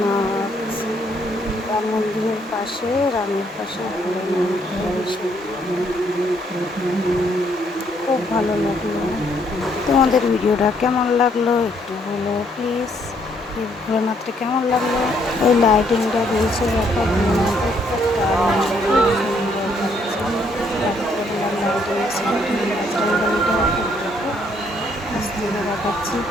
রাম মন্দিরের পাশে, রামের পাশে ভোলেনাথ। খুব ভালো লাগলো। তোমাদের ভিডিওটা কেমন লাগলো একটু বলো প্লিজ। এই ভোলেনাথটা কেমন লাগলো? এই লাইটিংটা দিয়েছে দেখো, ভোলেনাথের দেখাচ্ছি।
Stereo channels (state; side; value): normal; both; correlation 0.69